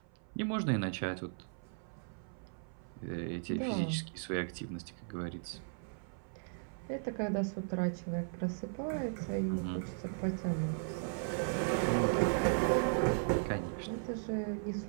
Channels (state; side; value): silent; left; 53 dB below the other